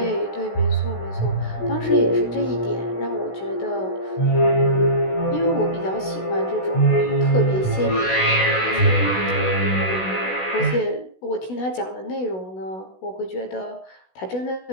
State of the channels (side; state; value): right; late; 16 ms